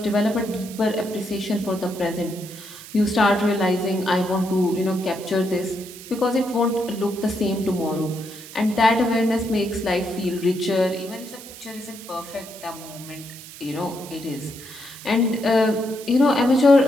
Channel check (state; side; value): noise; right; hiss, 15 dB below the sound